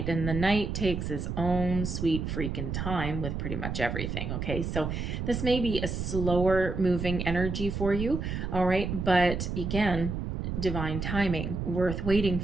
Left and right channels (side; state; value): right; noise; rumble, 3 dB below the sound